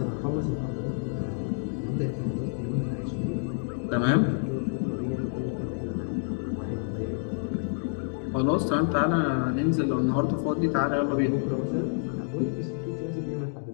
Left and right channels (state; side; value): silent; right; digital silence